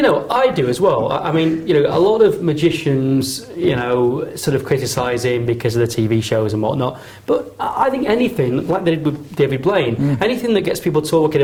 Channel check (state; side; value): identical; both; correlation 1.00